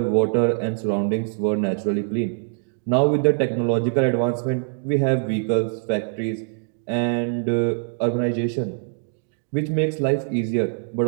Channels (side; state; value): left; silent; 63 dB below the other